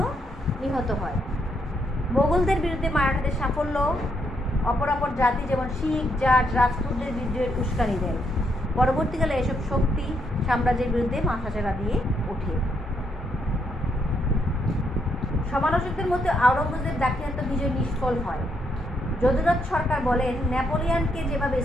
নিহত হয়। মোগলদের বিরুদ্ধে মারাঠাদের সাফল্য অপরাপর জাতি যেমন শিখ, জাট, রাজপুতদের বিদ্রোহের উস্কানি দেয়। পরবর্তীকালে এসব শক্তি সাম্রাজ্যের বিরুদ্ধে মাথাচাড়া দিয়ে ওঠে। সমালোচকদের মধ্যে আওরঙ্গজেব দাক্ষিণাত্য বিজয় নিষ্ফল হয়। যদুনাথ সরকার বলেন, নেপোলিয়ানকে যেভাবে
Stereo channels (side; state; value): both; normal; correlation 0.76